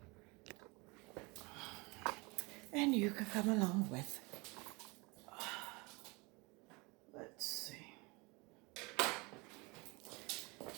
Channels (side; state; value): left; quieter; 26.9 dB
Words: And you can come along with. Let's see.